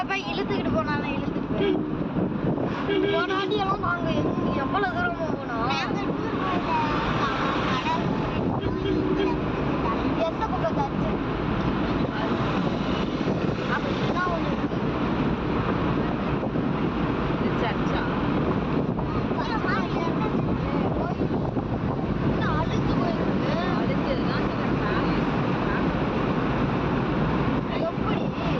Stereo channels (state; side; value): identical; both; correlation 1.00